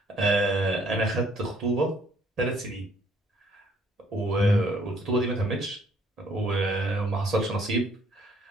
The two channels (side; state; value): both; normal; correlation 0.64